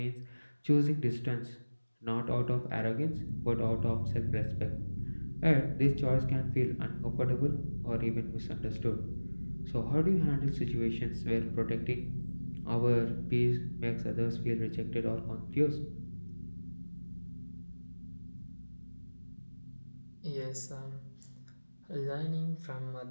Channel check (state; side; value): inverted; both; correlation -1.00